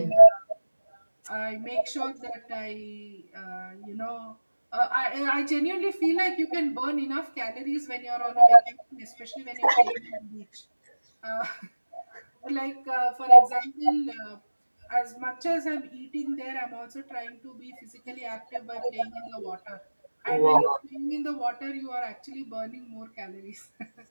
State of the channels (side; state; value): both; inverted; correlation -1.00